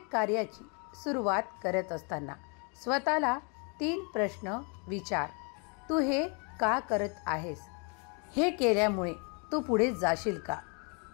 कार्याची सुरुवात करत असताना स्वतःला 3 प्रश्न विचार. तू हे का करत आहेस? हे केल्यामुळे तू पुढे जाशील का?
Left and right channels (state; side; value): quieter; right; 35.2 dB